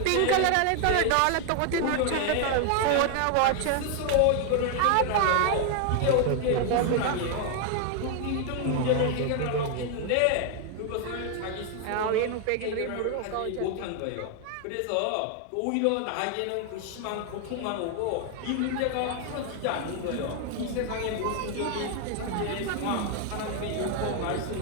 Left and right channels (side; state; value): both; different; correlation 0.00